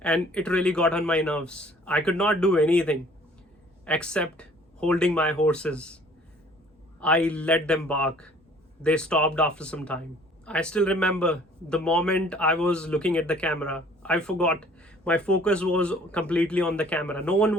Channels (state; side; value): normal; both; correlation 0.55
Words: And it really got on my nerves. I could not do anything except holding my horses. I let them bark. They stopped after some time. I still remember the moment I was looking at the camera. I forgot. My focus was completely on the camera. No one